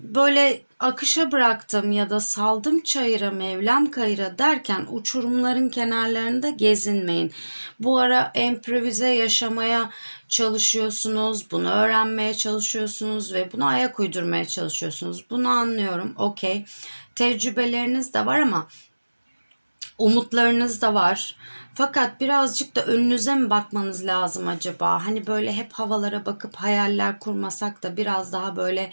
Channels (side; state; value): both; inverted; correlation -1.00